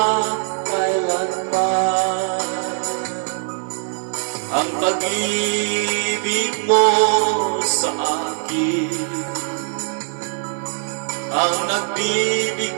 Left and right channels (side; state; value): left; silent; 65 dB below the other